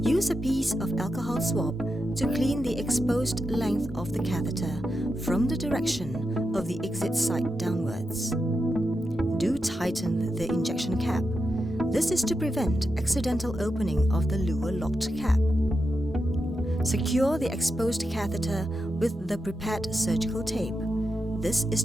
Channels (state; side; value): normal; both; correlation 0.88